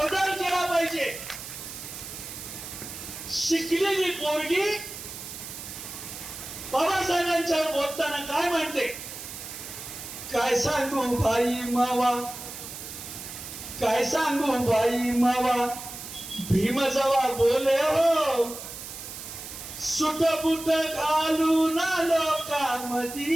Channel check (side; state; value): right; noise; hiss, 10 dB below the sound